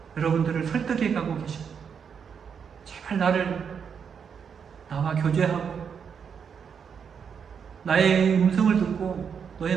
여러분들을 설득해 가고 계십니다. 제발 나와 교제하고 나의 음성을 듣고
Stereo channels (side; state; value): left; quieter; 6.9 dB